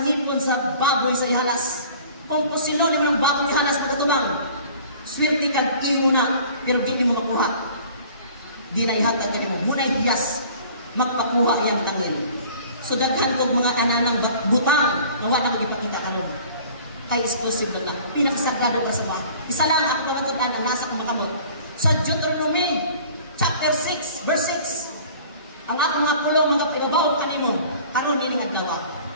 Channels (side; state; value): both; inverted; correlation -0.48